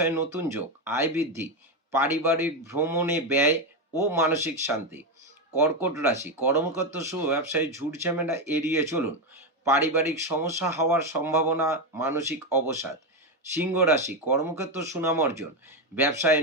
নতুন যোগ, আয় বৃদ্ধি, পারিবারিক ভ্রমণে ব্যয় ও মানসিক শান্তি। কর্কট রাশি, কর্মক্ষেত্র শুভ, ব্যবসায় ঝুট ঝামেলা এড়িয়ে চলুন, পারিবারিক সমস্যা হওয়ার সম্ভাবনা, মানসিক অবসাদ। সিংহ রাশি, কর্মক্ষেত্র সুনাম অর্জন, ব্যবসায়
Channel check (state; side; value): normal; both; correlation 0.10